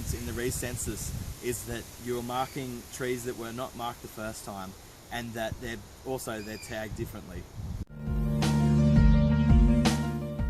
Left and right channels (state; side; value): identical; both; correlation 1.00